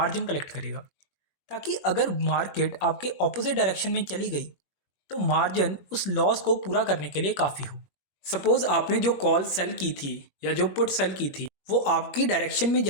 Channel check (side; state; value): right; late; 21 ms